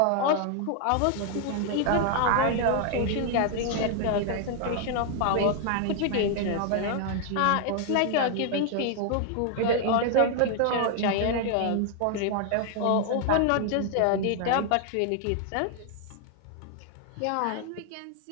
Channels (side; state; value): both; different; correlation 0.00